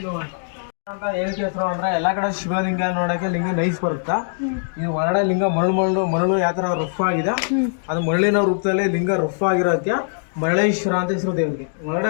ಅಂತ ಏನಕ್ಕೆ ಹೆಸರು ಅಂದ್ರೆ ಎಲ್ಲಾ ಕಡೆ ಶಿವಲಿಂಗ ನೋಡಕ್ಕೆ ಲಿಂಗ ನೈಸ್ ಬರುತ್ತಾ. ಈ ಹೊರಗಡೆ ಲಿಂಗ ಮರಳು ಯಾವ ತರ ರಫ್ ಆಗಿದೆ, ಅದು ಮರಳಿನ ರೂಪದಲ್ಲಿ ಲಿಂಗ ರಫ್ ಆಗಿರೋದಕ್ಕೆ ಮರಳೇಶ್ವರ ಅಂತ ಹೆಸರು ದೇವರಿಗೆ. ಒಳಗಡೆ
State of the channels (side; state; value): right; silent; digital silence